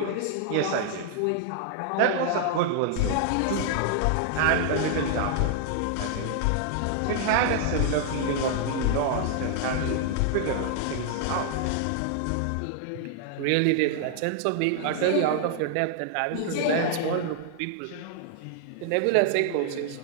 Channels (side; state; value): both; different; correlation 0.00